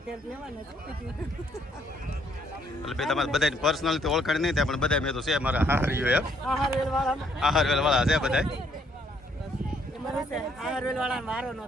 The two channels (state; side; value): normal; both; correlation 0.68